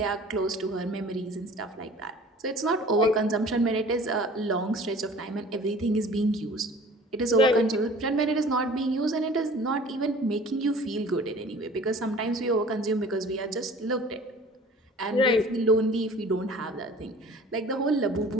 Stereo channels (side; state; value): both; normal; correlation 0.46